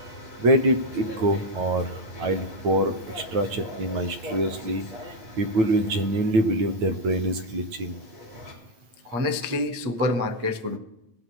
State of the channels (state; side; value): late; left; 9.1 ms